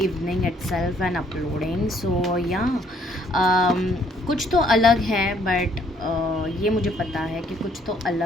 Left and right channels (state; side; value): normal; both; correlation 0.65